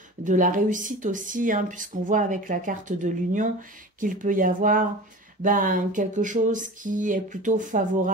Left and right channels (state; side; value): normal; both; correlation 0.35